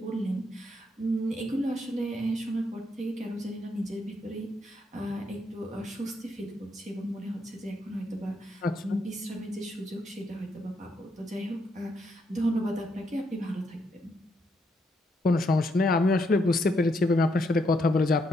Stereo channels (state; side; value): normal; both; correlation 0.76